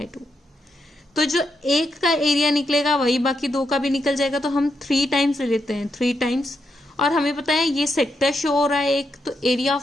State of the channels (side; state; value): both; normal; correlation 0.82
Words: तो जो एक का एरिया निकलेगा वही बाकी दो का भी निकल जाएगा, तो हम 3 टाइम्स ले लेते हैं, 3 टाइम्स। और हमें पता है ये सेक्टर शो हो रहा है एक, तो एरिया